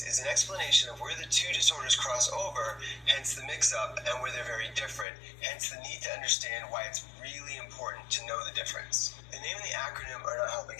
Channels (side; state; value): right; drops out; at 5.1 s